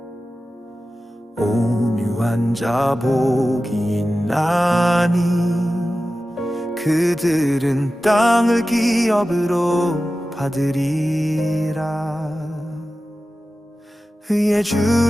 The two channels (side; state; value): both; normal; correlation 0.94